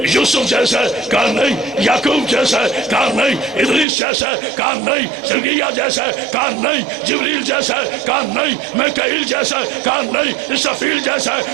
یوسف جیسے کا نہیں، یعقوب جیسے کا نہیں، ادریس جیسے کا نہیں، زکریا جیسے کا نہیں، جبریل جیسے کا نہیں، میکائیل جیسے کا نہیں، اسرافیل جیسے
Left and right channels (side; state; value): left; drops out; at 3.9 s